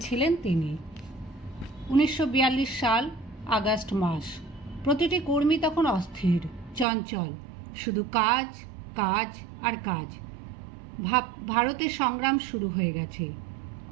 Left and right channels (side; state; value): left; drops out; at 6.9 s